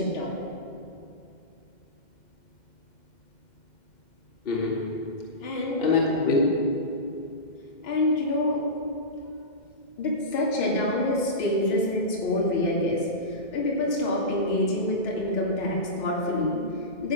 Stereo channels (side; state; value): right; late; 2.1 ms